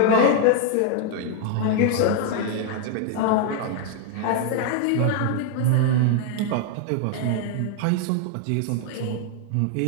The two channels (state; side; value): different; both; correlation 0.00